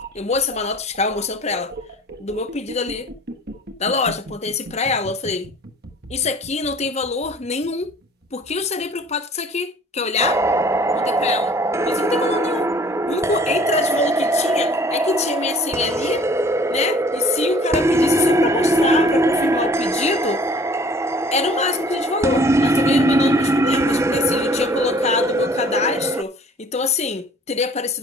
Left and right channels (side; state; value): both; normal; correlation 0.52